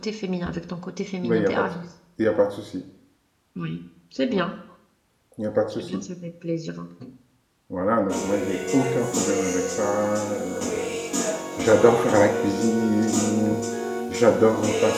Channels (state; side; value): identical; both; correlation 1.00